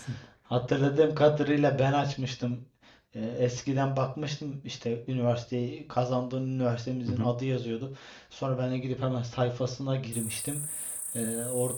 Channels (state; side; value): identical; both; correlation 1.00